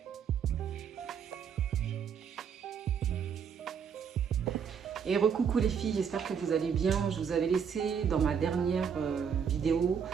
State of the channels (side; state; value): left; quieter; 7.1 dB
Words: Et recoucou les filles, j'espère que vous allez bien. Je vous avais laissé dans ma dernière vidéo